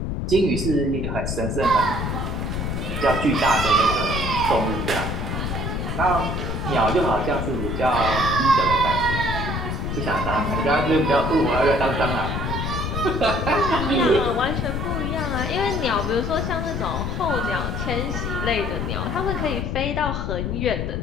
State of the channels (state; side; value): noise; left; rumble, 2 dB below the sound